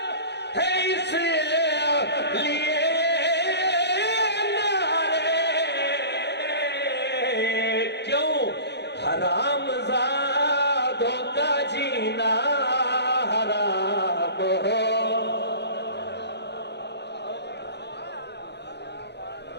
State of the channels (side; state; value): right; late; 0.50 ms